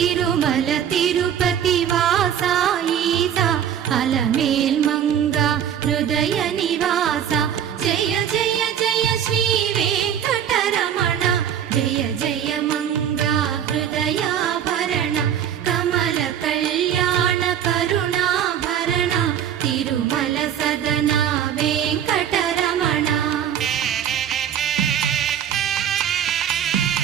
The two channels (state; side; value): quieter; left; 9.3 dB